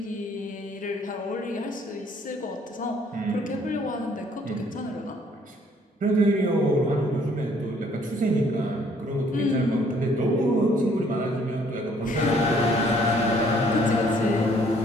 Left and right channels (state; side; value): normal; both; correlation 0.62